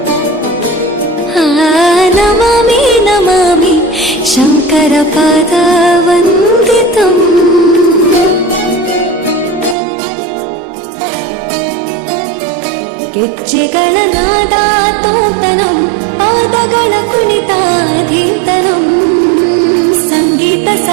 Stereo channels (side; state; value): left; drops out; at 9.8 s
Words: ನಮಾಮಿ ನಮಾಮಿ ಶಂಕರ ಪಾದ ವಂದಿತಂ ಗೆಜ್ಜೆಗಳ ನಾದ ತೋಂತನಂ ಪಾದಗಳ ಕುಣಿತಾಧೀತನಂ ಸಂಗೀತ